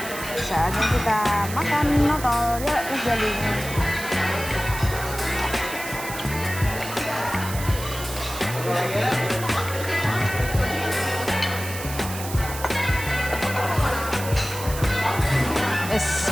Saatnya kita makan notol ya, jadi.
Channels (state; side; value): noise; right; hiss, 10 dB below the sound